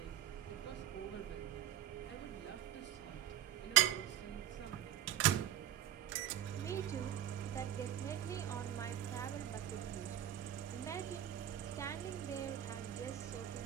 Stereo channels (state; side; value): quieter; left; 11.5 dB